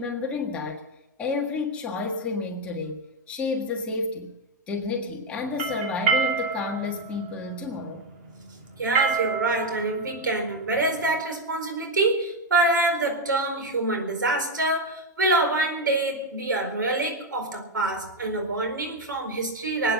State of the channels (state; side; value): normal; both; correlation 0.04